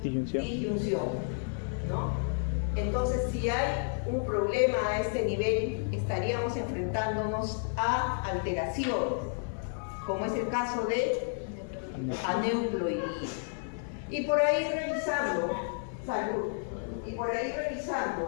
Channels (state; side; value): silent; right; digital silence